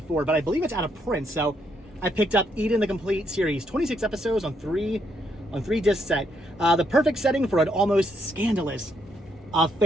but I believe it's out of print. So I picked up Eden, the complete series, 26 episodes on 3 disc set. The perfect setting for an almost scandalous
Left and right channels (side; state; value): both; normal; correlation 0.74